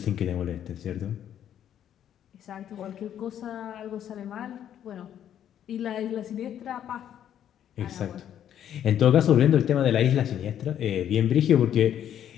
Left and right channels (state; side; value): quieter; right; 10.2 dB